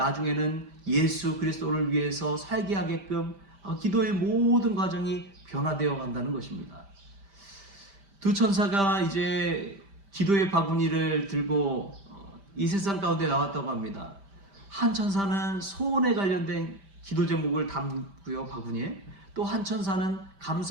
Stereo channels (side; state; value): left; late; 5.1 ms